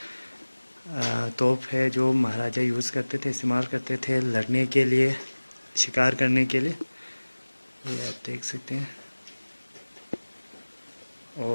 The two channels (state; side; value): inverted; both; correlation -1.00